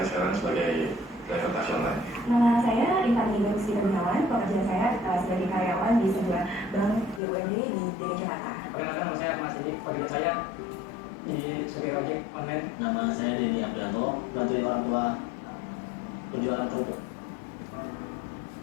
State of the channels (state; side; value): drops out; right; at 7.2 s